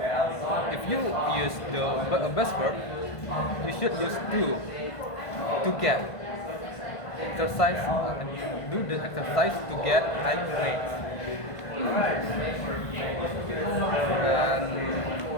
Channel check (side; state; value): right; late; 1.5 ms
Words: if you use the best verb, you should use to get exercise. Do the exercise to get high grades. And